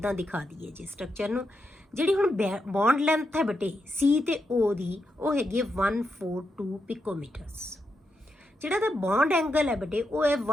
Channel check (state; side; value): normal; both; correlation 0.84